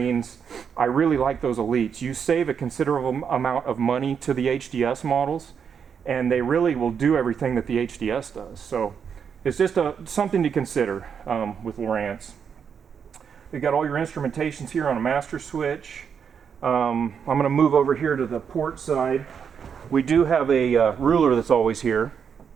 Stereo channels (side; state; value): left; quieter; 7.1 dB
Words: I really like those Elites. You save a considerable amount of money to the HDS models, and they really will do everything that the HDS does. So it's just something to consider with Lowrance. You've got all your instrumentations here on a master switch. I'm going to move over here to the port side. We do have a ruler that's always here